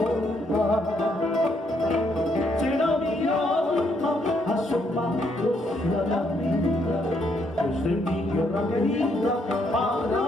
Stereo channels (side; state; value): both; normal; correlation 0.73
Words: Será mi alma asomándose a la vida desde mi tierra querida para